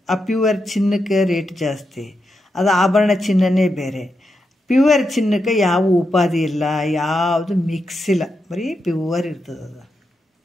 ಆ ಪ್ಯೂವರ್ ಚಿನ್ನಕ್ಕೆ ರೇಟ್ ಜಾಸ್ತಿ, ಅದು ಆಭರಣ ಚಿನ್ನನೇ ಬೇರೆ. ಪ್ಯೂವರ್ ಚಿನ್ನಕ್ಕೆ ಯಾವ ಉಪಾಧಿ ಇಲ್ಲ, ಯಾವುದು ಮಿಕ್ಸ್ ಇಲ್ಲ, ಬರೀ ಪ್ಯೂವರ್ ಇರ್ತದೆ ಅದು.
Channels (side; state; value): both; normal; correlation 0.85